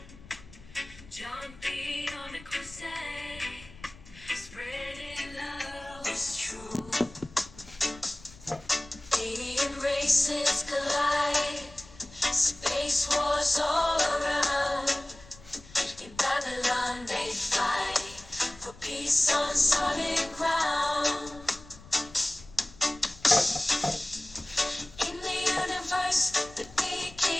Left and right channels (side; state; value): left; noise; rumble, 20 dB below the sound